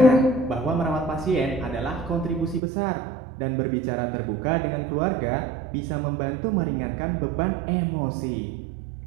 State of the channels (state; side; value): drops out; left; at 2.6 s